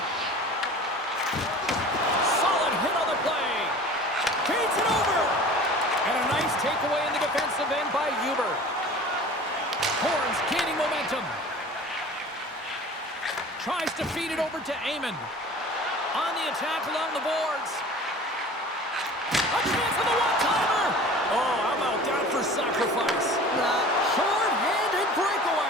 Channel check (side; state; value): both; normal; correlation 0.42